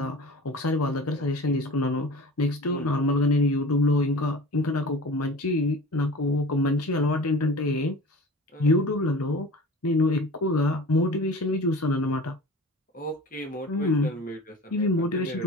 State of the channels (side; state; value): both; normal; correlation 0.38